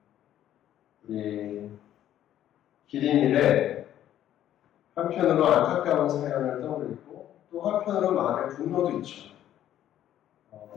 우리 기린일에 한편으로 안타까운 사연을 떠올리고 또 한편으로 마음의 분노도 있죠.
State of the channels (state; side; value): quieter; right; 11.7 dB